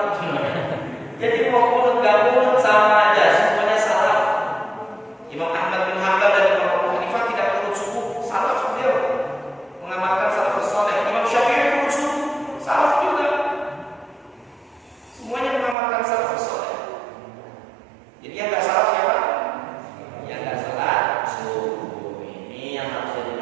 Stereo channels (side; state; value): left; drops out; at 15.8 s